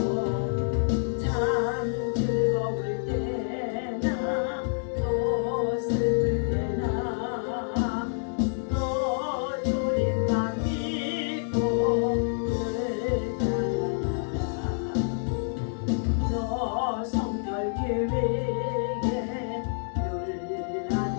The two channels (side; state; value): right; silent; digital silence